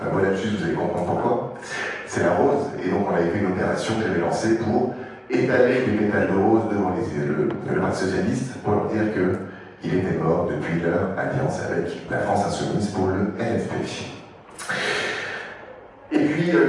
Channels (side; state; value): both; identical; correlation 1.00